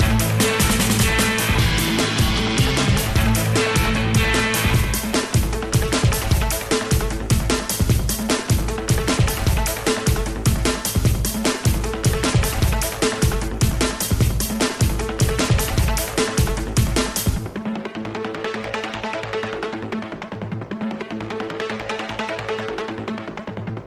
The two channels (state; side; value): identical; both; correlation 1.00